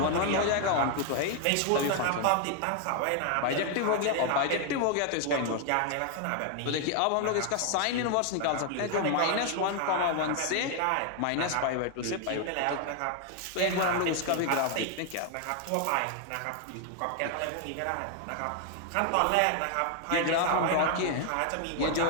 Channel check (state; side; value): different; both; correlation 0.00